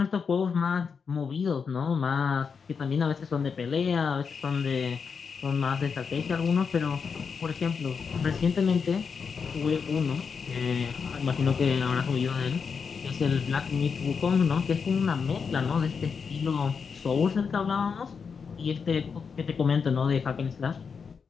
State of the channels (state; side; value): quieter; right; 5.8 dB